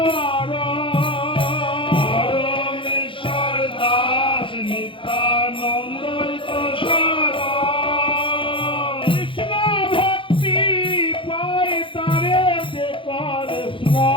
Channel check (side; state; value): right; late; 0.25 ms